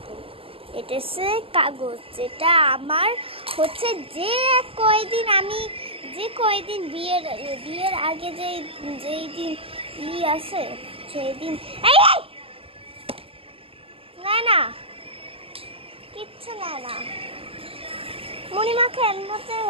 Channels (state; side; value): late; left; 0.27 ms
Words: এটা হচ্ছে কাগজ, যেটা আমার হচ্ছে যে কয়দিন বিয়ের আগে যেই দিন আছে সেই দিন। না কিচ্ছু না, মণিমাকে এমনিতে